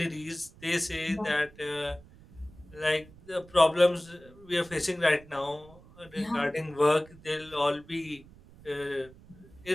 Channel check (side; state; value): right; noise; rumble, 22 dB below the sound